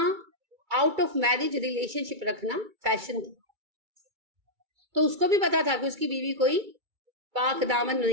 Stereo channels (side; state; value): left; late; 2.3 ms